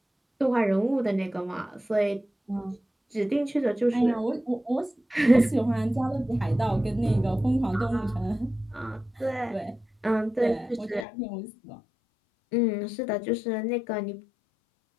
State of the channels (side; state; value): right; drops out; at 11.1 s